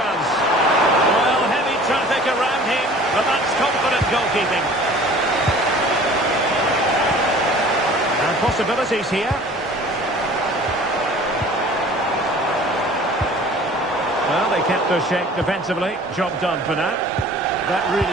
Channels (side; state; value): both; normal; correlation 0.47